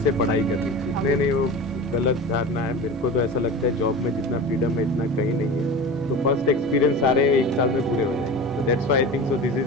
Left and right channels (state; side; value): noise; left; rumble, 28 dB below the sound